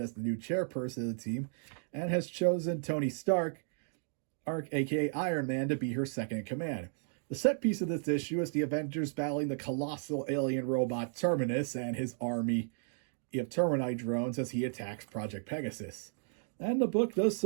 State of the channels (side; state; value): left; silent; digital silence